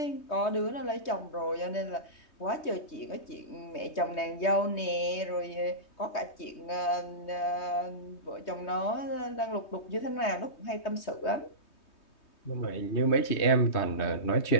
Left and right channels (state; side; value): late; right; 3.2 ms